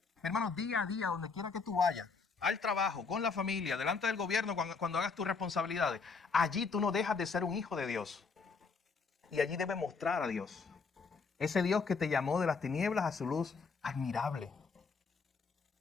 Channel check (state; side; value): quieter; right; 4.9 dB